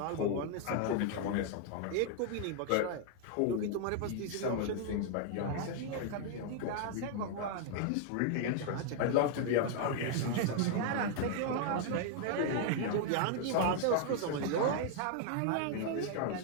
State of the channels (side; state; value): both; different; correlation 0.00